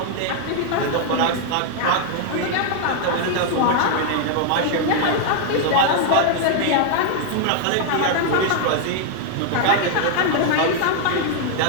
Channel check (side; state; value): both; different; correlation 0.00